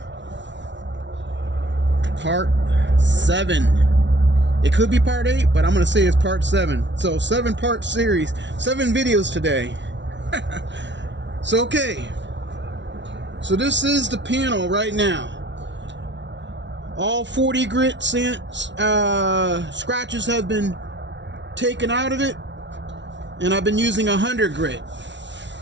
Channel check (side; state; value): left; late; 0.52 ms